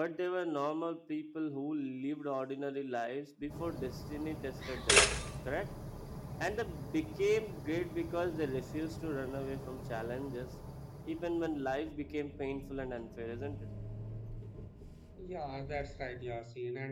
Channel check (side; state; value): both; identical; correlation 1.00